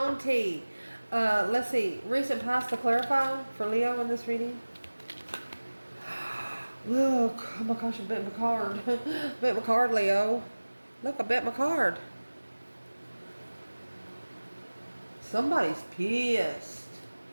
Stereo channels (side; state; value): both; inverted; correlation -1.00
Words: tea. Let's see. Recent past to clarify for Leo in this reading. Look. Oh my gosh, I bet my card. Bet my card, Leo. Look, I bet my card. Somebody's pissed.